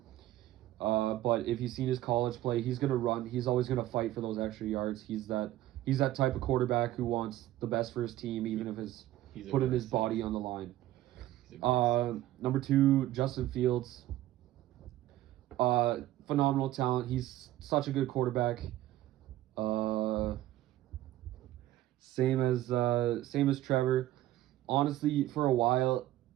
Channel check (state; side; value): quieter; left; 14.8 dB